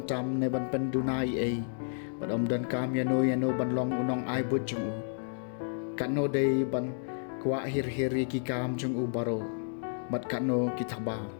ne ban pendunai ai. Bad dan kam yano ban long unong ai but jong u. Kano day ban kwa hir-hiri ki kam jong u baro. Bad kano kitaba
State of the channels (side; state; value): right; silent; digital silence